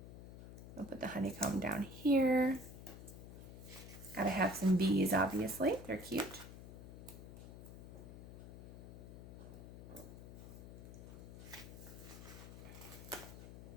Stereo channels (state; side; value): noise; left; hum, 12 dB below the sound